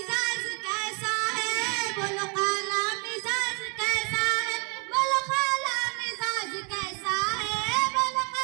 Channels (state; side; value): quieter; left; 34.0 dB